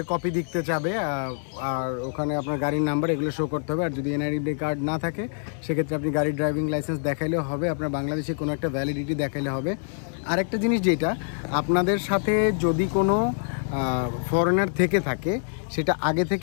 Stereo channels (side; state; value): right; silent; digital silence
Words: কপি দিতে চাবে, আর ওখানে আপনার গাড়ির নাম্বার এগুলো শো করতে হবে। আর যদি এনআইডি কার্ড না থাকে সেক্ষেত্রে আপনি গাড়ির ড্রাইভিং লাইসেন্স দেখাইলেও হবে, আপনার বাংলাদেশে কোনো একটা ভ্যালিডিটি দেখাইলে হবে। আর একটা জিনিস যেটা আপনাদের সাথে যদি কোনো ফরেনার থেকে থাকে সেটা আগে